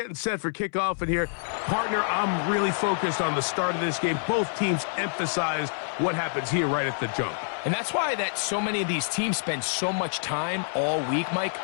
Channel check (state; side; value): silent; right; 60 dB below the other